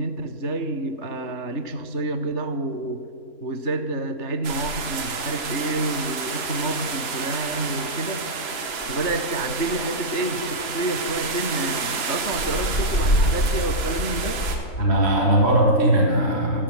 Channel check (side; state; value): right; late; 3.0 ms